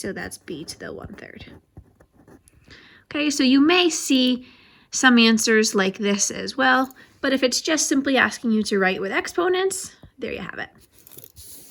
that's b to the 1/3. Okay, so you may see some answers like this as well, but if it's just simply asking you to write with exponents, there you have it.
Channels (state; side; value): identical; both; correlation 1.00